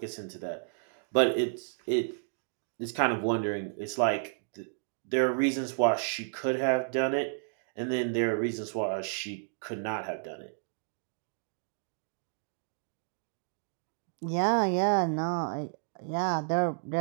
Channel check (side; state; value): left; silent; digital silence